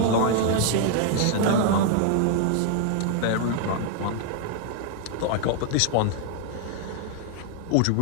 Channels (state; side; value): different; both; correlation 0.00